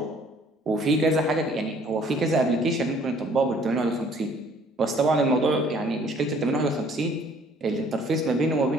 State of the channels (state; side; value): normal; both; correlation 0.58